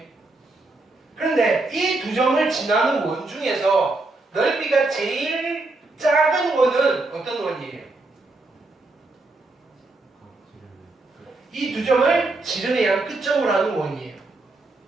그런데 이 두 점을 지나는 원 중에서 넓이가 제일 작은 원은 어떤 원이에요? 이 두 점을 지름의 끝점으로 하는 원이에요.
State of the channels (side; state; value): left; quieter; 3.2 dB